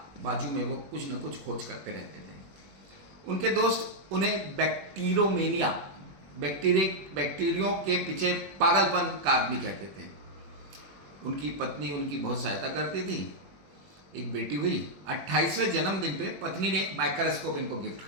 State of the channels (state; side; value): late; left; 21 ms